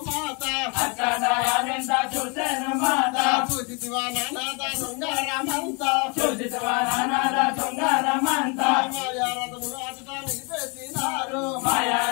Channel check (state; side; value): quieter; right; 33.3 dB